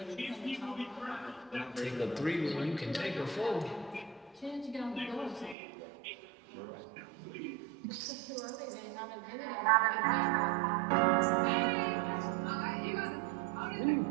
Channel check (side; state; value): left; drops out; at 5.6 s